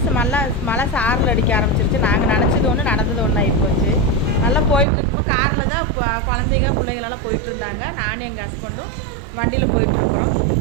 மழை சாரல் அடிக்க ஆரம்பிச்சிருச்சு. நாங்கள் நினச்சது ஒன்று, நடந்தது ஒன்று ஆகிப்போச்சு. நல்லா போயிட்டுருக்கும்போது காரில் தான் குழந்தைங்க பிள்ளைங்களெல்லாம் போயிட்டுருந்தாங்க. நானும் எங்கள் ஹஸ்பண்டும் வண்டியில் போயிட்டுருக்குறோம்.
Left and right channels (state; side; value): drops out; left; at 4.9 s